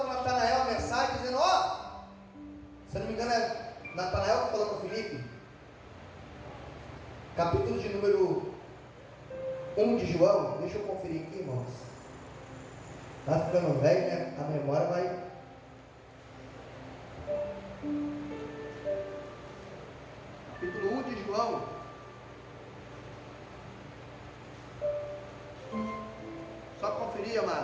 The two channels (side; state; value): both; identical; correlation 1.00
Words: Natanael a mensagem, dizendo, se não me engano é Natanael que falou para Filipe, capítulo de número 1 de João, deixa eu conferir aqui, irmãos, está ficando velho, né? A memória vai... Capítulo 1 de João, só conferir,